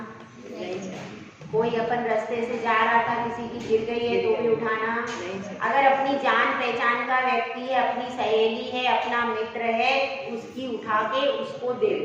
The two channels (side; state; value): both; identical; correlation 1.00